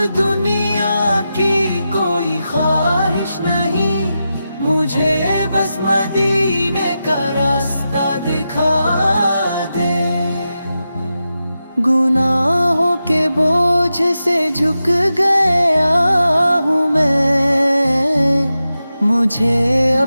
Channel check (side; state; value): both; inverted; correlation -0.90